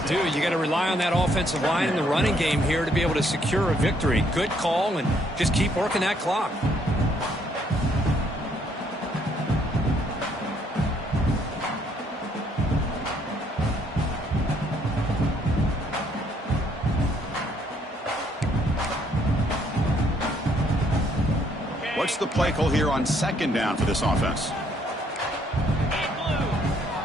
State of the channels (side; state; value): both; normal; correlation 0.68